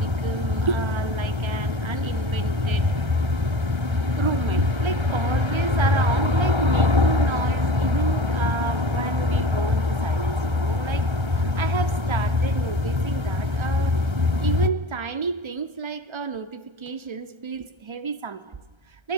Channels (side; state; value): left; late; 1.3 ms